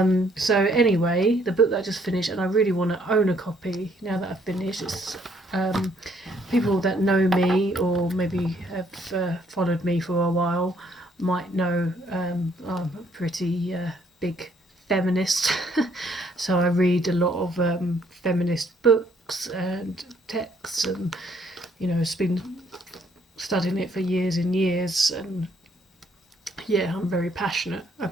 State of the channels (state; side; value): normal; both; correlation 0.67